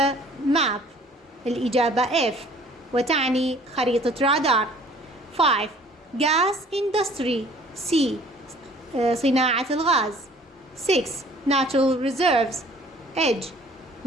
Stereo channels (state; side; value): normal; both; correlation 0.53